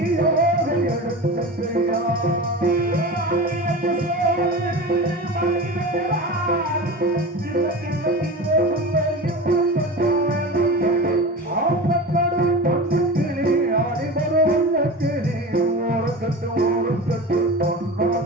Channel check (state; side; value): normal; both; correlation 0.30